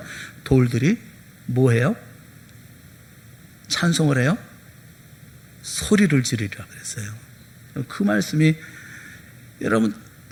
돌들이 뭐해요? 찬송을 해요? 소리를 지르리라 그랬어요. 그 말씀이 여러분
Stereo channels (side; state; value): both; identical; correlation 1.00